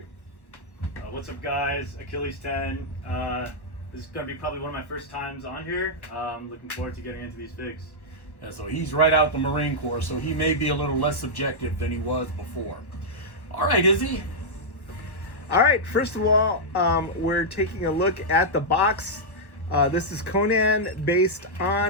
What's up, guys? Achilles 10. This is going to be probably one of my first times on here. Looking forward to getting into these figs. Yeah, so he's right out the Marine Corps, so he may be a little less subjective than he was before. All right, Izzy. All right, first of all, we're taking a look at the box. This is Conan based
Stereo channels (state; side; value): late; right; 1.3 ms